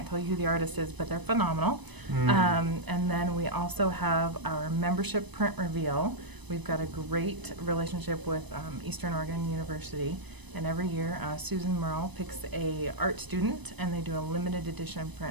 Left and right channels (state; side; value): late; left; 1.0 ms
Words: tell you who the artist is, but they're phenomenal. And then we also have our membership print reveal. We've got a great relationship with Eastern Oregon University, and every year Susan Merle picks a art student, and they do a limited edition